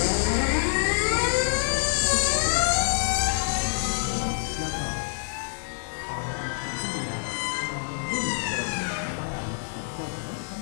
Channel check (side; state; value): right; silent; digital silence